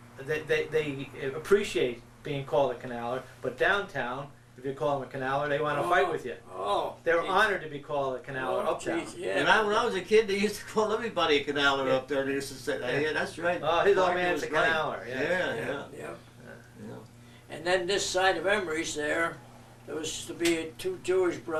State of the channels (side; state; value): both; identical; correlation 1.00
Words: they appreciate being called a canaler, but downtown, if you call them a canaler, they want to fight with you. Oh. They're geez. honored to be called a canaler Oh, uptown. geez, yeah. When I was a kid, they used to call everybody a canaler up there. They used to say, "Yeah, that's right." Oh, his old Parker man's was a right." canaler. Yeah. Yeah. Yeah. Yeah. And then this side of Emery's there was to be two Jewish